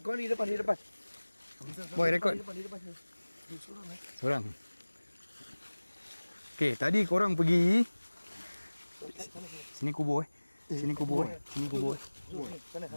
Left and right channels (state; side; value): inverted; both; correlation -1.00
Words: kau di depan. Boy record. Di depan sini. Seorang. Okay, tadi korang pergi sini kubur Sini kubur Sana.